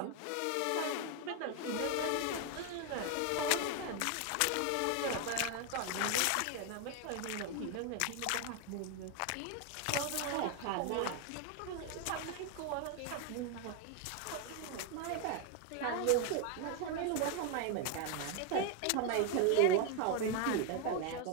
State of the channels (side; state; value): both; different; correlation 0.01